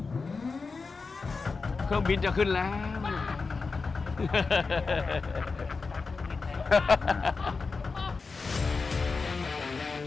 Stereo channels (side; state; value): right; quieter; 4.4 dB